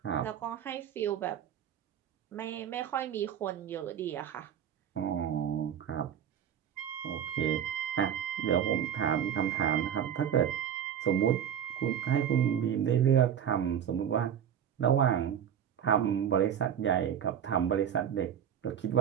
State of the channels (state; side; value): quieter; left; 9.0 dB